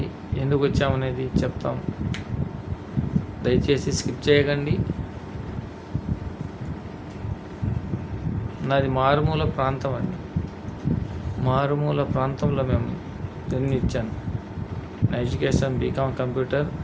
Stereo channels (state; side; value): identical; both; correlation 1.00